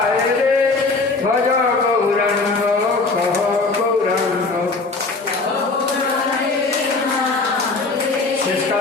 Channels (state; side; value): quieter; right; 3.8 dB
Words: রে। ভজ গৌরাঙ্গ কহ গৌরাঙ্গ। শেষ